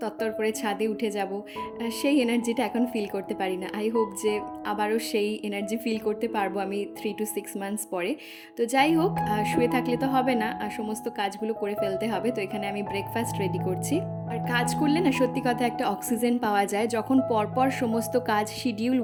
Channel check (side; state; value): both; identical; correlation 1.00